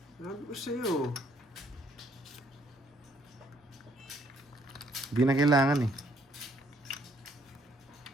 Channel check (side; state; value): both; normal; correlation 0.67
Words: Sabi ko sa'yo. Hindi na kailangan, eh.